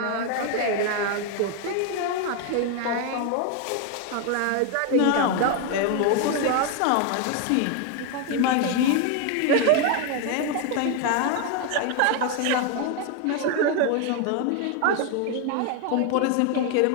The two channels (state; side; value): different; both; correlation 0.01